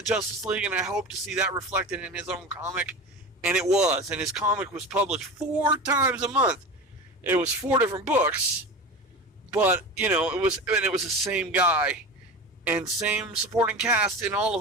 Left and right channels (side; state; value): both; normal; correlation 0.30